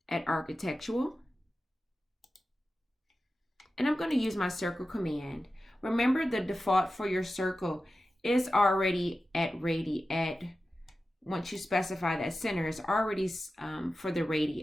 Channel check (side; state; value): both; normal; correlation 0.93